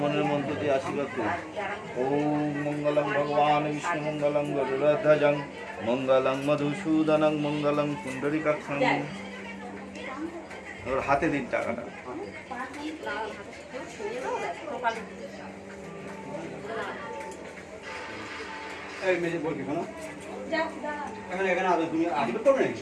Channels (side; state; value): both; identical; correlation 1.00